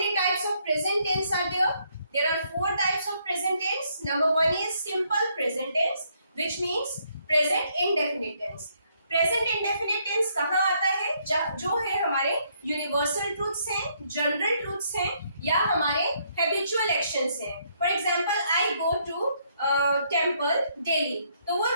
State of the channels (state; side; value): inverted; both; correlation -0.71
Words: types of present tense are there? There are 4 types of present tense. Number 1 is simple present tense, which means present indefinite tense. Present indefinite tense कहाँ आता है? जो है हमारे universal truths हैं, general truths हैं या हमारे हैबिचुअल एक्शंस हैं. For example I go to temple daily, तो वो